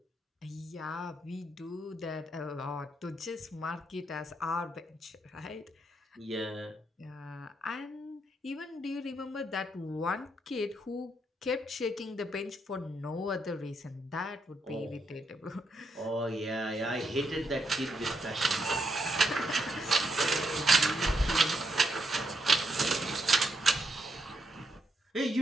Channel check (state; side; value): normal; both; correlation 0.80